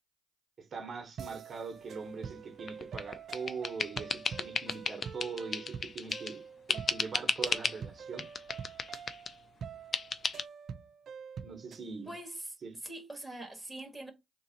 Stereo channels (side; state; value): both; normal; correlation 0.80